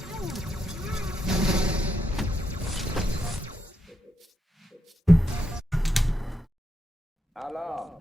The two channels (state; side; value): normal; both; correlation 0.83